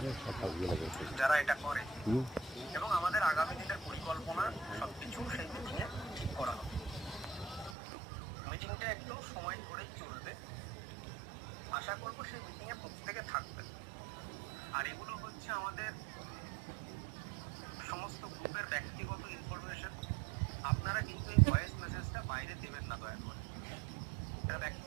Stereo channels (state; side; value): drops out; left; at 7.8 s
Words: যারা এটা করে এবং আমাদের আগামী দিনের পরিকল্পনা সবকিছু সেই মিটিংয়ে ঠিক করা হবে। মিটিংটা একটু সময় ধরেই চলবে। আশা করব সেই মিটিংয়ে প্রত্যেকে থাকবেন। আর এগুলো হচ্ছে আমাদের সমস্ত গ্রুপের ব্যক্তিগত ইনফরমেশন। আপনারা কিন্তু এই ভয়েস মেসেজটা বাইরে দেবেন না দয়া করে। এটা